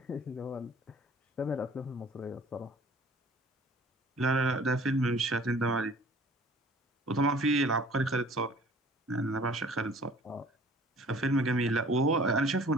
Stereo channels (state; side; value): normal; both; correlation 0.50